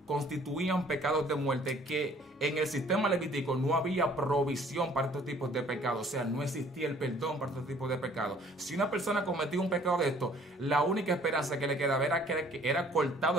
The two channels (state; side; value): normal; both; correlation 0.56